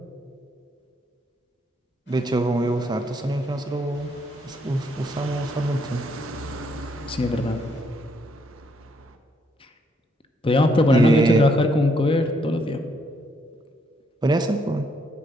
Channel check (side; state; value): both; normal; correlation 0.72